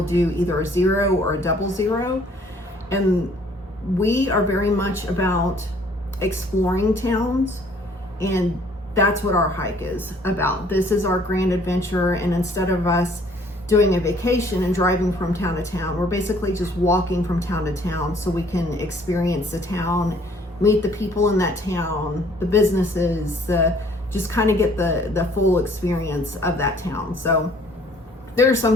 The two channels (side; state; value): both; normal; correlation 0.59